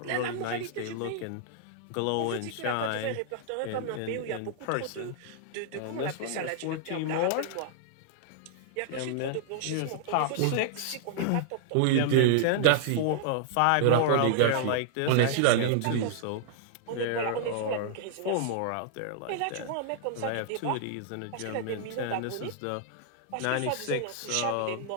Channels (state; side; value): different; both; correlation -0.01